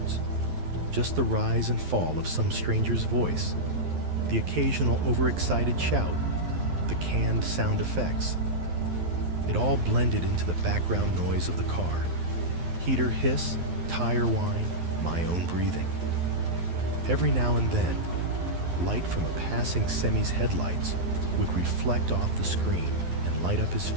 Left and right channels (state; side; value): late; left; 12 ms